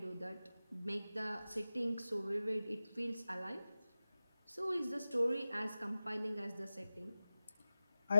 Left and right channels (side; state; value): both; inverted; correlation -0.94